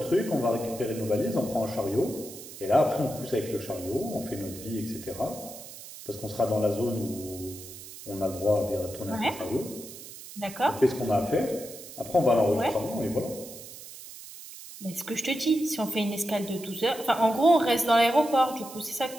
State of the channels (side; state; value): right; noise; hiss, 14 dB below the sound